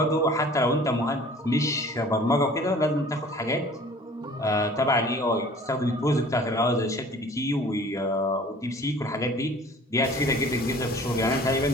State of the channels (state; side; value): normal; both; correlation 0.48